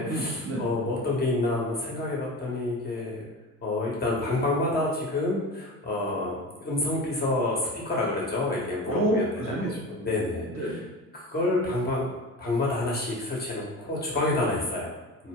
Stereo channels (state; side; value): normal; both; correlation 0.30